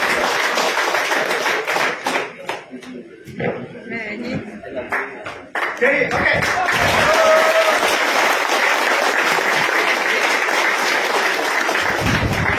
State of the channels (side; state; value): both; identical; correlation 1.00